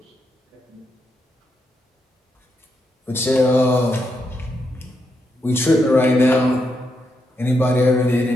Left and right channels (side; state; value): both; normal; correlation 0.82